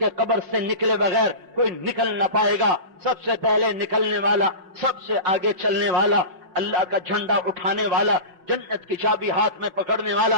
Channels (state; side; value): late; left; 5.5 ms